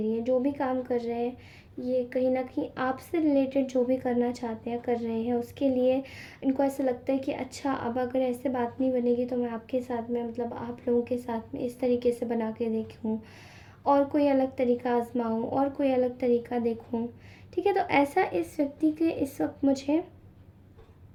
है. जो भी काम कर रहे हैं ये कहीं ना कहीं आपसे रिलेटेड जो भी करना चाहते हैं कर रहे हैं, उसके लिए इनको ऐसा लगता है कि अच्छा अब अगर ऐसे बात नहीं बनेगी तो मैं आपके साथ में मतलब आप लोगों के साथ में इस तरीके से बना के देखूँ और कोई अलग तरीका आजमाऊँ और कोई अलग तरीका देखूँ. ठीक है, तो ऐसा इस व्यक्ति के इस वक्त मुझे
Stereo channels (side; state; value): both; identical; correlation 1.00